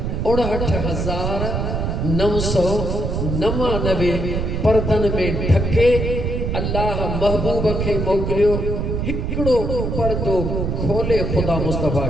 69,999 पर्दनि में ढके अल्लाह महबूब खे मोकिलियो। हिकिड़ो पर्दो खोले खुदा मुस्तफ़ा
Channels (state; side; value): noise; right; rumble, 1 dB below the sound